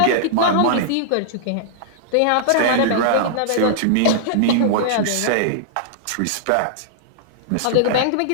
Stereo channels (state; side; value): different; both; correlation -0.02